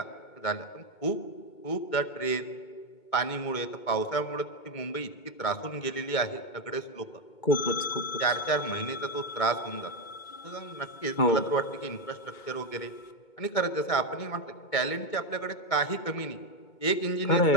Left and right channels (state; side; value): late; right; 2.2 ms